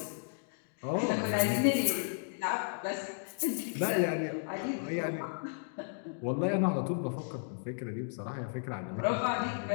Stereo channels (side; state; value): right; silent; digital silence